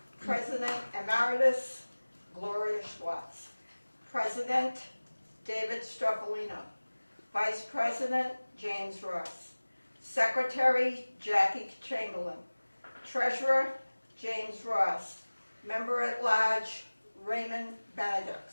President Emeritus Gloria Schwartz, President David Stropolino, Vice President James Ross, Secretary Jackie Chamberlain, Treasurer James Ross, Member at Large Raymond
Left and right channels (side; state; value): both; inverted; correlation -1.00